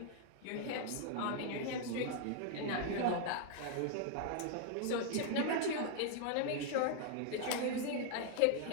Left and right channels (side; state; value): both; different; correlation 0.00